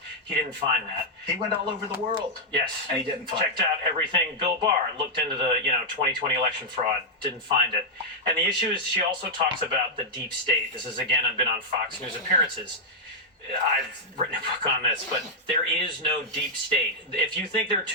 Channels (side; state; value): both; normal; correlation -0.03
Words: He didn't find that. He went all over the world. Yes. And he didn't find Checked out everything. Bill Barr looked into the 2020 election fraud, didn't find it. And the issue is she also talks about the deep state. This is, again, I've been on Fox News appearances. I've written a book on this, but there is no deep state. If you think there are